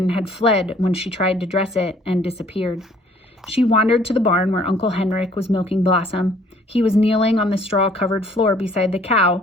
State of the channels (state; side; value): normal; both; correlation 0.58